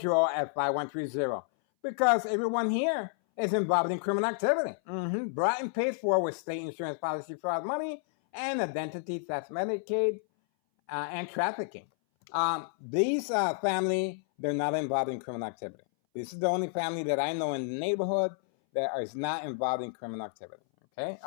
at 5130, because everyone here is involved in criminal activity, brought and paid for with state insurance policy fraud money and identity theft, Medicaid, and trafficking. These family, they're not involved in criminal activity. This is the only family that I know in the neighborhood that is not involved in criminal activity, okay?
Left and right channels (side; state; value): right; silent; 57 dB below the other